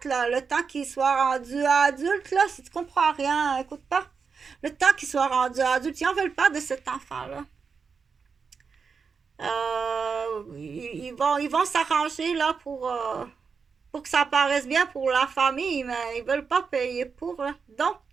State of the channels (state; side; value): quieter; left; 5.6 dB